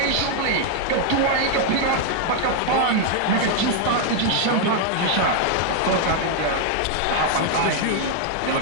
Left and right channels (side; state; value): both; different; correlation 0.00